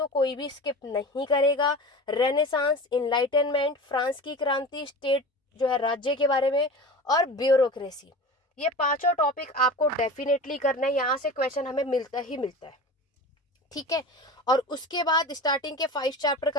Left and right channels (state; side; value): normal; both; correlation 0.33